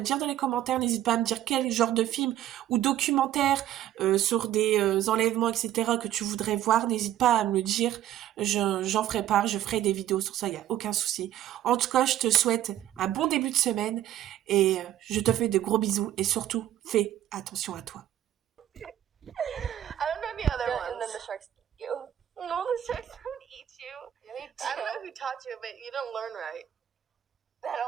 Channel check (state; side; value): quieter; left; 12.2 dB